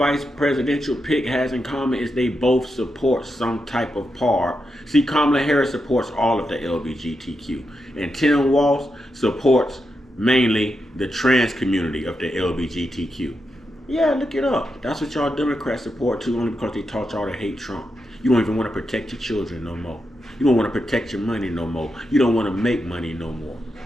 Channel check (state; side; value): normal; both; correlation 0.86